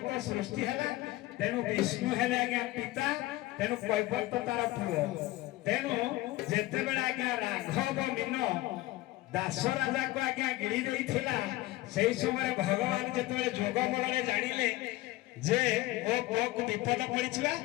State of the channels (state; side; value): quieter; right; 18.0 dB